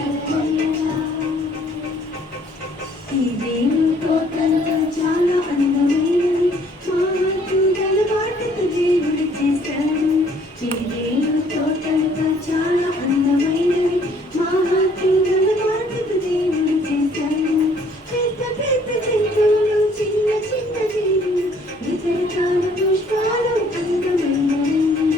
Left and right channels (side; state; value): both; normal; correlation 0.60